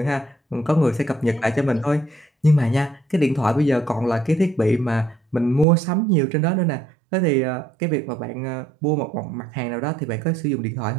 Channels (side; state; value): left; drops out; at 5.7 s